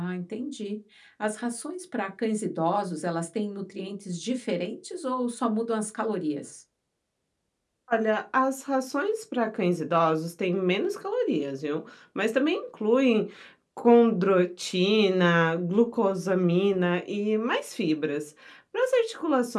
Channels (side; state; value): both; identical; correlation 1.00